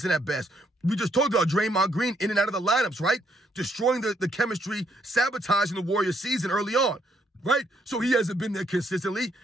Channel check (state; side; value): normal; both; correlation 0.72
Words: at best. We just talked about Draymond Green in and out of the lineups, right? Destroying the chemistry, sabotaging the Warriors season early on. right? So he hasn't been there consistently.